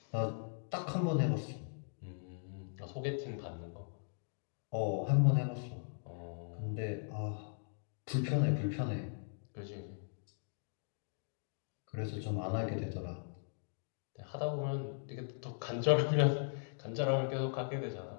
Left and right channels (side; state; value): right; silent; digital silence